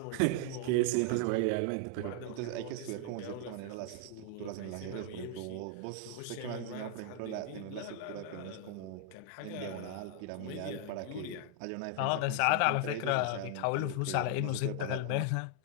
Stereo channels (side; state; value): both; different; correlation 0.00